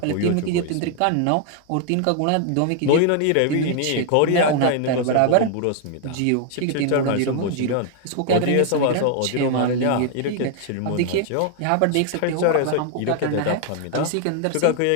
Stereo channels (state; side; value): different; both; correlation 0.00